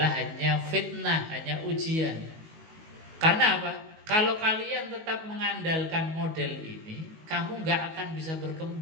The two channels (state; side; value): late; left; 19 ms